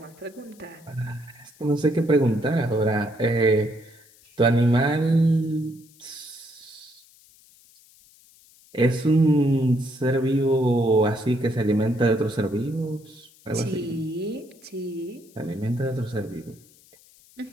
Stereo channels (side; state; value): left; noise; hiss, 27 dB below the sound